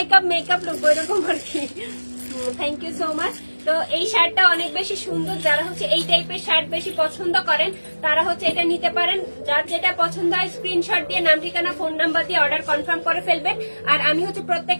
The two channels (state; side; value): inverted; both; correlation -1.00